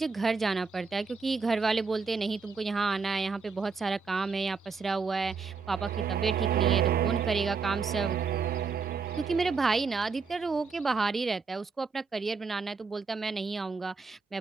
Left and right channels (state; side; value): quieter; left; 4.9 dB